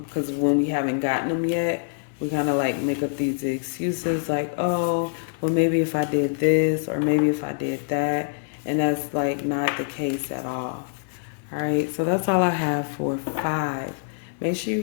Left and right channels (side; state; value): right; silent; 62 dB below the other